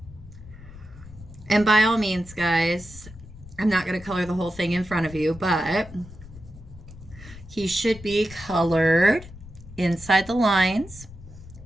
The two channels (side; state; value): left; noise; rumble, 17 dB below the sound